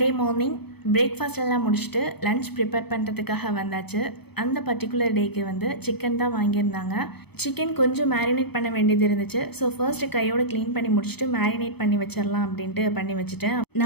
மார்னிங் பிரேக்ஃபாஸ்ட் எல்லாம் முடிச்சுட்டு லன்ச் ப்ரிப்பேர் பண்ணுறதுக்காக வந்தாச்சு. அந்த பர்டிகுலர் டேக்கு வந்து சிக்கன் தான் வாங்கியிருந்தாங்க. சிக்கன் கொஞ்சம் மேரினேட் பண்ண வேண்டியது இருந்துச்சு. ஸோ ஃபர்ஸ்ட்டு கையோடு க்ளீன் பண்ணி முடிச்சுட்டு மேரினேட் பண்ணி வச்சிடலாம் அப்படின்ட்டு பண்ணி வச்சுட்டேன்.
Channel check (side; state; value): right; late; 0.98 ms